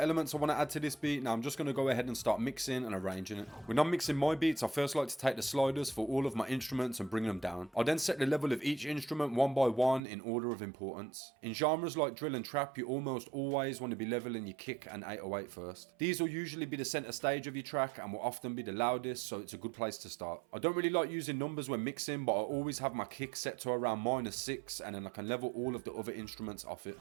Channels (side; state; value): left; drops out; at 10.0 s